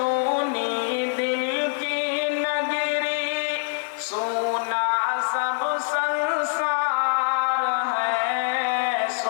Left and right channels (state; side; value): silent; right; 62 dB below the other